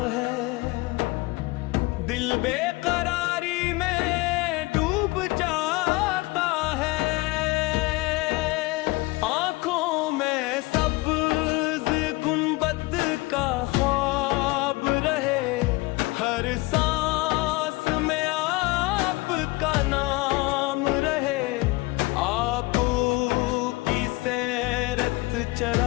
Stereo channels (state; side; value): quieter; right; 22.8 dB